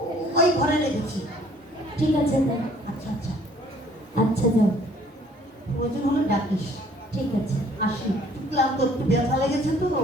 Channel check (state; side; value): normal; both; correlation 0.58